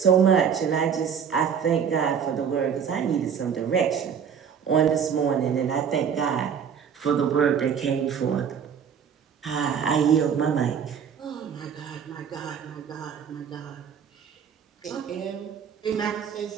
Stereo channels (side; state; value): left; quieter; 7.5 dB